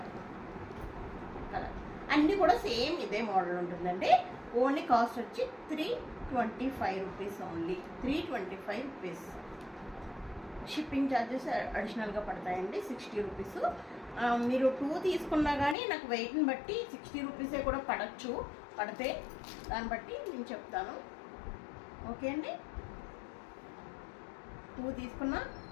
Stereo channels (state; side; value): drops out; right; at 15.8 s